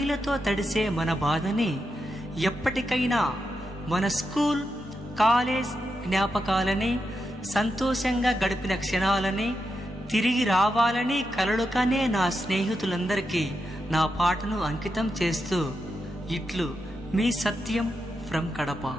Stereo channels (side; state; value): both; normal; correlation 0.86